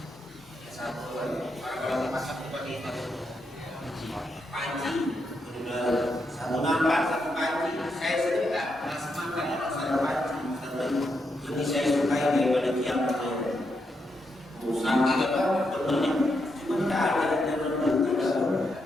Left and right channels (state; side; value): normal; both; correlation 0.82